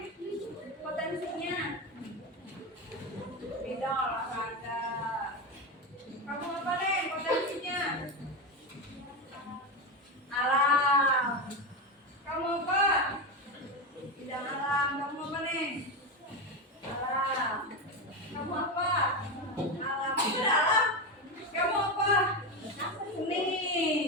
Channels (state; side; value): normal; both; correlation 0.16